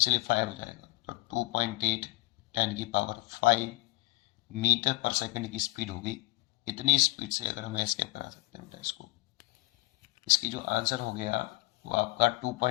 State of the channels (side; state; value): right; quieter; 23.2 dB